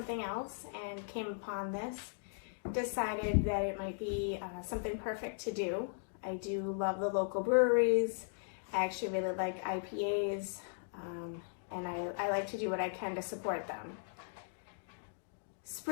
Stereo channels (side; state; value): right; silent; digital silence